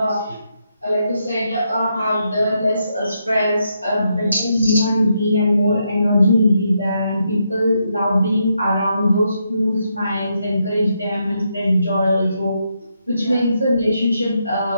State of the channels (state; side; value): inverted; both; correlation -0.80